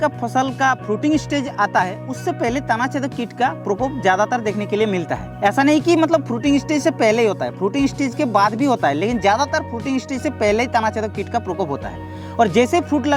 फसल का फ्रूटिंग स्टेज आता है उससे पहले तना छेदक कीट का प्रकोप ज्यादातर देखने के लिए मिलता है। ऐसा नहीं कि मतलब फ्रूटिंग स्टेज से पहले ही होता है, फ्रूटिंग स्टेज के बाद भी होता है, लेकिन ज्यादातर फ्रूटिंग स्टेज से पहले ही तना छेदक कीट का प्रकोप होता है। और जैसे फ्रूट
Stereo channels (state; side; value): identical; both; correlation 1.00